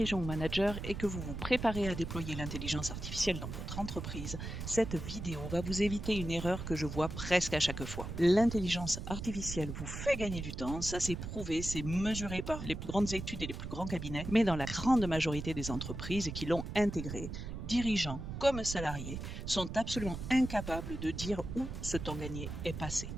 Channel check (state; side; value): noise; right; rumble, 7 dB below the sound